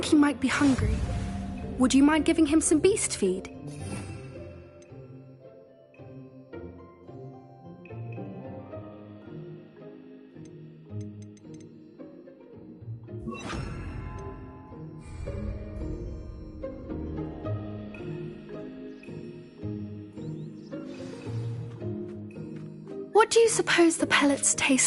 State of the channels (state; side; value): identical; both; correlation 1.00